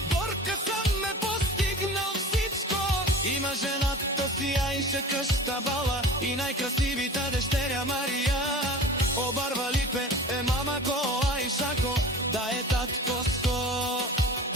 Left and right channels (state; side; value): normal; both; correlation 0.37